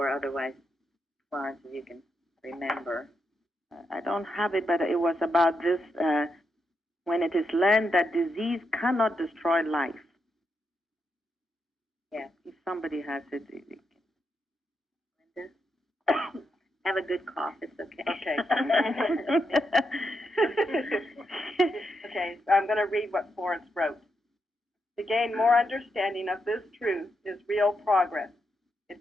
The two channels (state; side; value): normal; both; correlation 0.83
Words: otherwise, Florence, if you can remember? I don't have it, but it was about this, when it is learned that disease cannot destroy life. Yeah. If somebody has it. Linda? Have a good cough, it's okay. Okay. Okay, so I'm going to read what Florence wrote. To gain more understanding of this truth is real progress. It